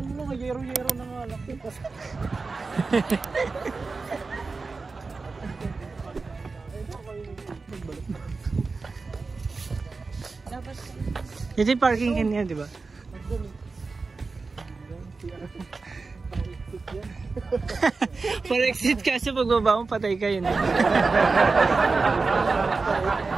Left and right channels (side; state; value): left; quieter; 4.1 dB